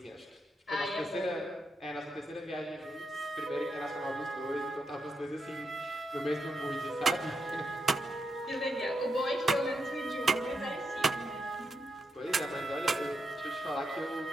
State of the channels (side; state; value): both; normal; correlation 0.83